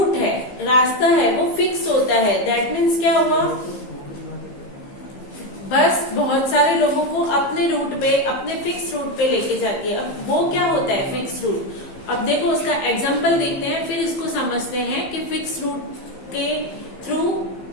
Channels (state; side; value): late; right; 15 ms